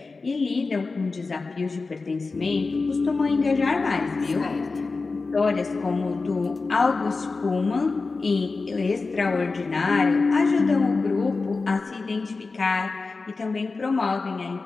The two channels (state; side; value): quieter; right; 4.0 dB